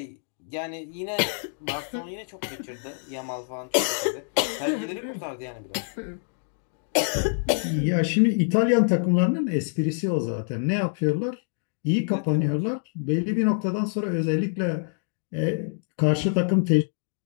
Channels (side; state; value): right; silent; digital silence